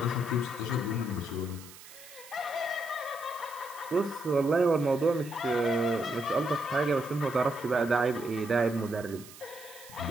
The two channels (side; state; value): right; noise; hiss, 18 dB below the sound